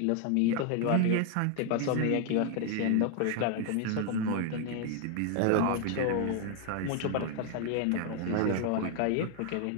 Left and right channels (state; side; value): different; both; correlation 0.00